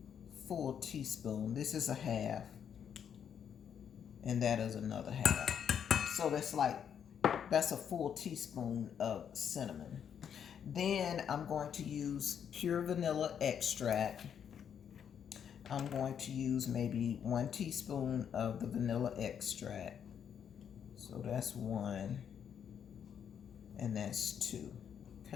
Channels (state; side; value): quieter; right; 8.2 dB